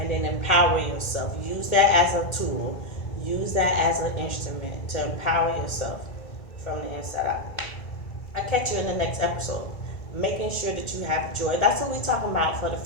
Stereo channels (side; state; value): right; late; 1.8 ms